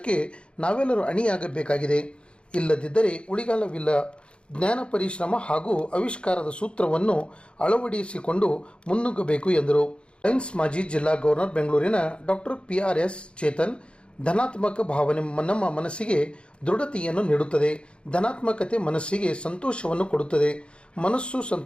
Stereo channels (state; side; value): late; right; 0.056 ms